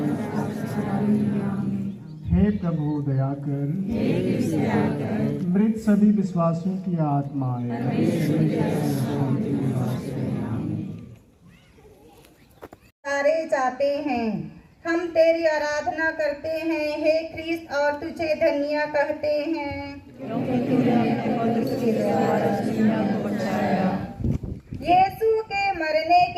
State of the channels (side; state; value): both; identical; correlation 1.00